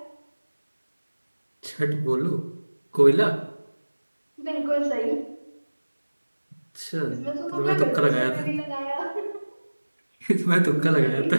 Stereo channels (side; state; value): both; inverted; correlation -1.00